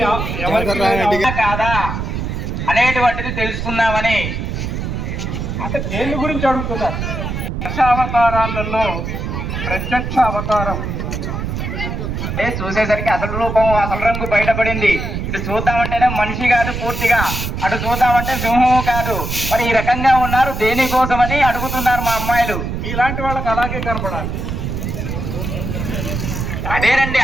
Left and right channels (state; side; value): noise; right; rumble, 4 dB below the sound